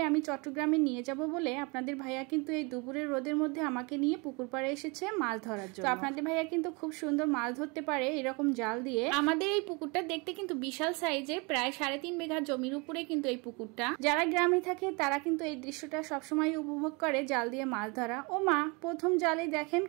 আমি চট্টগ্রামে নিয়ে যাব বলে আপনাদের ভাইয়া কিন্তু এই দুপুরের রোদের মধ্যে আমাকে নিয়ে পুকুর পাড়ে এসেছে মাছ ধরার জন্য। তো আপনাদের ভাইয়া কিন্তু খুব সুন্দর মাছ ধরতে পারে এরকম জাল দিয়ে। আমাদের এই পুকুরটা দেখতে কিন্তু বিশাল সাইজের, প্রায় 3.5 বিঘা জমির উপরে কিন্তু এই পুকুরটা। যারা গ্রামে থাকে তারা কিন্তু এই দৃশ্যটা সবসময় উপভোগ করে জাল দিয়ে মাছ ধরা। ও মা, প্রথম জালে দেখেন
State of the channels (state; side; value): quieter; left; 29.2 dB